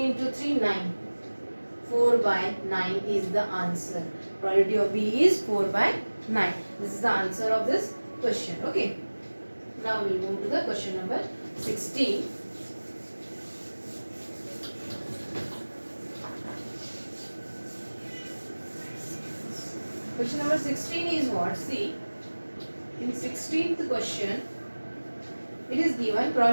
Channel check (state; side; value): inverted; both; correlation -1.00